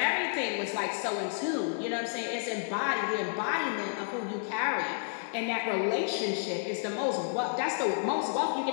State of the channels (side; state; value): right; silent; digital silence